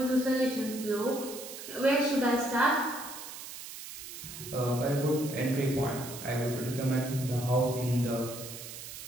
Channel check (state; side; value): noise; right; hiss, 11 dB below the sound